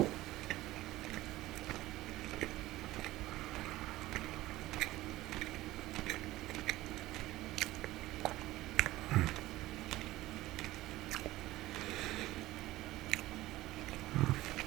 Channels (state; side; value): quieter; left; 17.0 dB